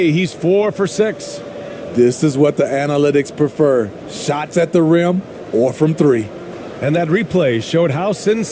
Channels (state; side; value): identical; both; correlation 1.00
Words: he's 4 for 6. This is what the analytics prefer. Shots at the rim or from 3. And that replay showed how